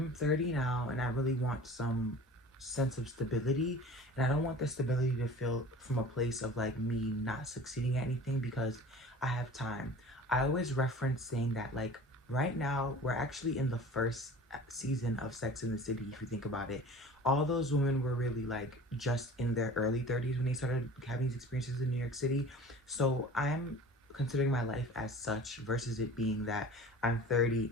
30 now and I really want some sense of stability. And I don't want the stability to feel from a place of like me not succeeding at anything because I have time. I always reference saying that like right now we're actually in the first season of Sex in the City, if you think about it. All those women were really like just in their early 30s when they started having these experiences in New York City. So I'm considering my life as such versus it being that I'm 30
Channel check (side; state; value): both; normal; correlation 0.41